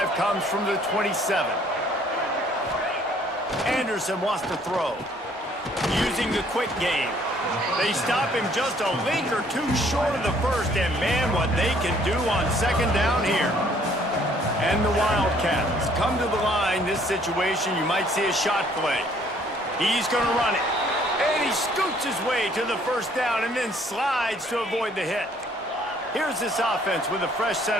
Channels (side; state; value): both; normal; correlation 0.61